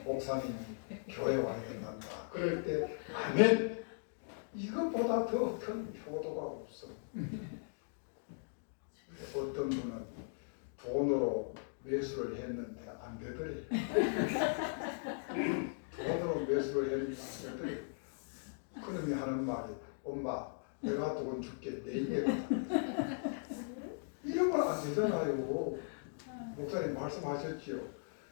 목사님이 교회 와야 된단다. 그럴 때 아멘. 이것보다 더 큰 효도가 없어. 어떤 분은 돈으로 매수를 했는데 안 되더래. 돈으로 매수를 했는데 안 되더래. 그놈이 하는 말이 엄마 내가 돈 줄게 내일에 이런 건 안 되잖아요. 목사님 말씀하셨지요.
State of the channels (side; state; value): right; silent; digital silence